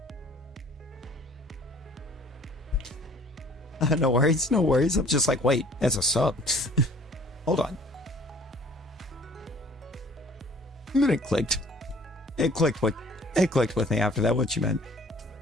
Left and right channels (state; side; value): normal; both; correlation 0.53